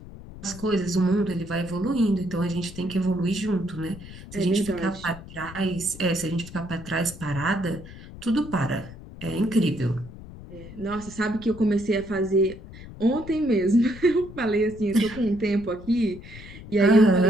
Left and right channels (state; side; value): noise; left; rumble, 15 dB below the sound